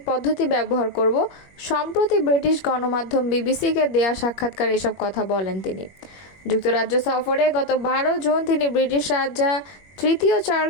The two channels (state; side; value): late; right; 21 ms